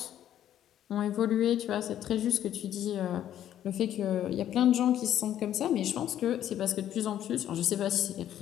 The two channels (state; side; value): quieter; right; 11.1 dB